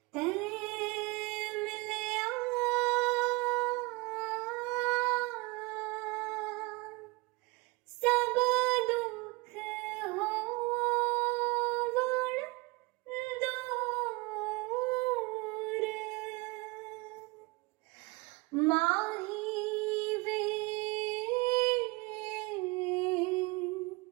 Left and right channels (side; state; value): left; quieter; 25.0 dB